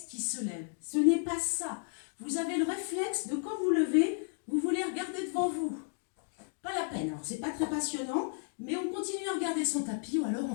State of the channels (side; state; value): right; silent; 56 dB below the other